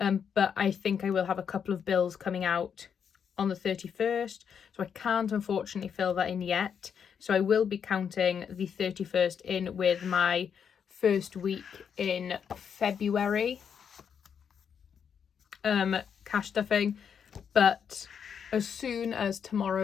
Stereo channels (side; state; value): right; quieter; 7.4 dB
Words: I think I will have a couple of bills coming out on the 31st, so I can't unfortunately fill that in yet. So I will be counting the 31st in with my first week in February cash stuffing. But as soon as